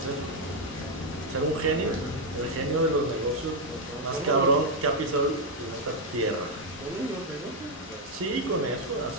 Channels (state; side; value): normal; both; correlation 0.00